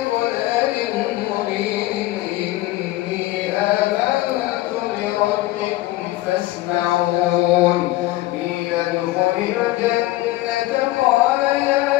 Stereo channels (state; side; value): quieter; right; 16.9 dB